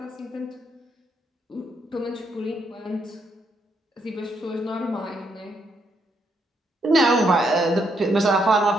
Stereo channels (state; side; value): normal; both; correlation 0.76